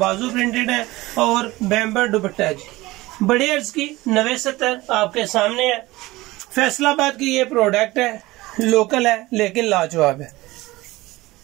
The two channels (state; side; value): quieter; left; 19.6 dB